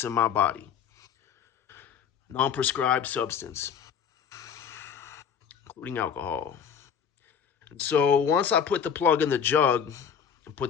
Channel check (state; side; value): quieter; right; 7.7 dB